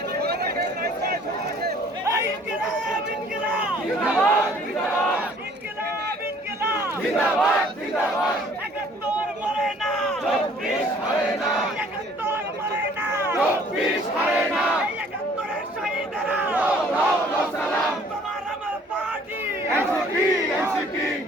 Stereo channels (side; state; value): both; normal; correlation 0.56